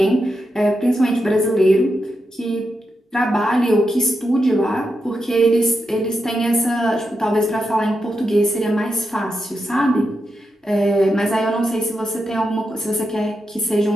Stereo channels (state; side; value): normal; both; correlation 0.86